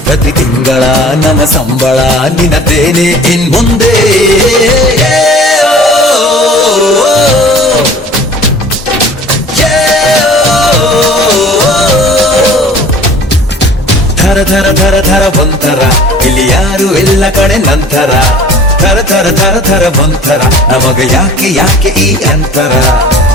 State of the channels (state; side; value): normal; both; correlation 0.46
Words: ಪ್ರತಿ ತಿಂಗಳ ನನ್ನ ಸಂಬಳ ನಿನ್ನದೇನೆ ಇನ್ ಮುಂದೆ. ಥರ ಥರ ಥರ ಥರ ಒಂಥರ, ಇಲ್ಲಿ ಯಾರು ಎಲ್ಲ ಕಡೆ ನಂತರ. ಥರ ಥರ ಥರ ಥರ ಒಂಥರ, ನಮಗ ಯಾಕೆ ಯಾಕೆ ಈ ಅಂತರ.